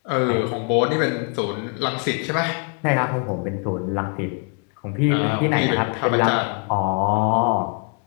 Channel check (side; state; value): right; quieter; 38.3 dB